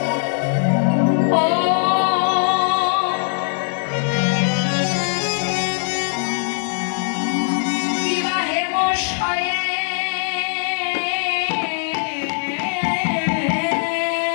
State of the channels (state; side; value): silent; right; 61 dB below the other